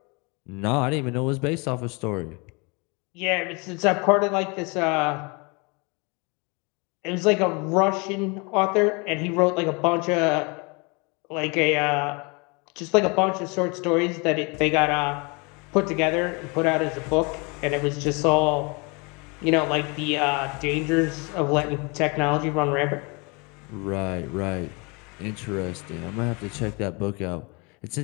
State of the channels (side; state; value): right; quieter; 29.9 dB